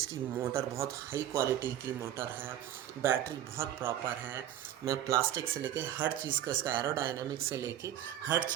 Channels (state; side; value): quieter; left; 11.7 dB